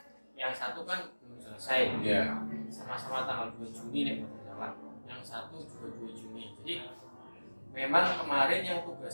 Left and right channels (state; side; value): inverted; both; correlation -1.00